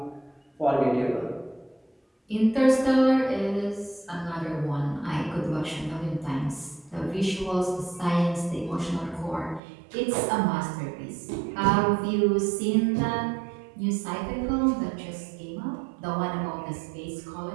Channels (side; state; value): left; drops out; at 9.6 s